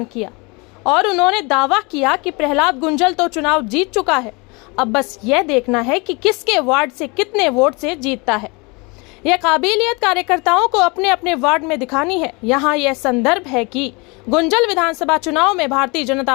किया और उन्होंने दावा किया कि प्रहलाद गुंजल तो चुनाव जीत चुका है, अब बस यह देखना है कि किसके वार्ड से कितने वोट से जीतता है। यह काबिलियत कार्यकर्ताओं को अपने अपने वार्ड में दिखानी है। यहाँ यह संदर्भ है कि गुंजल विधानसभा चुनाव में भारतीय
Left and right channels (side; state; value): right; quieter; 28.3 dB